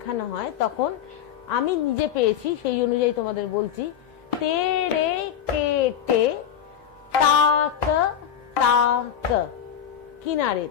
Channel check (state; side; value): quieter; right; 9.1 dB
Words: হয়, তখন আমি নিজে পেয়েছি, সেই অনুযায়ী তোমাদের বলছি, তেরে কেটে তাক তাক